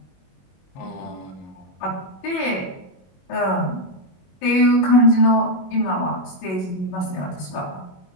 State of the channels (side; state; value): right; late; 21 ms